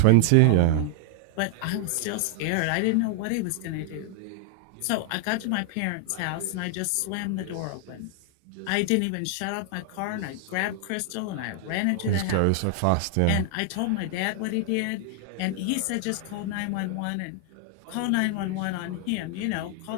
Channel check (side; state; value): both; different; correlation 0.00